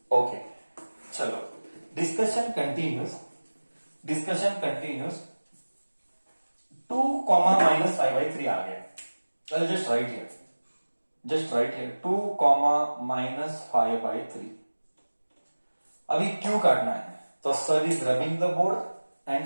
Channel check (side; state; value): both; inverted; correlation -1.00